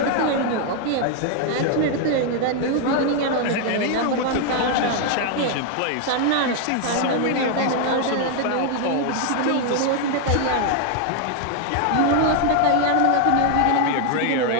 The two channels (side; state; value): both; different; correlation 0.00